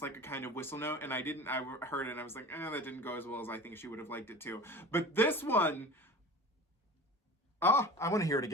like a kind of whistle note, and I heard it and I was like, that didn't go as well as I think she would have liked it to. But this one, I want to hear it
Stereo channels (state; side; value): normal; both; correlation 0.36